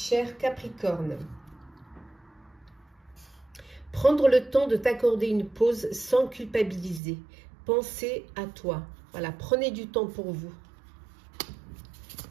Capricorne, prendre le temps de t'accorder une pause sans culpabiliser. Pensez à toi. Voilà, prenez du temps pour vous.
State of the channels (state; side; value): drops out; left; at 7.0 s